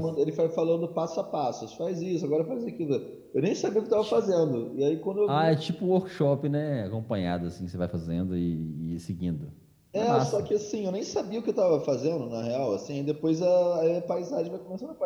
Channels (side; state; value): both; identical; correlation 1.00